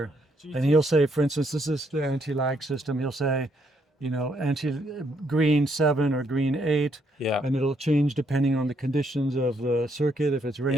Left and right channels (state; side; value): normal; both; correlation 0.73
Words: and he'll say, for instance, this is the anti-lag system. He'll say, green 7 or green 8, Yeah. and it'll change depending on the conditions of the circuit. If it's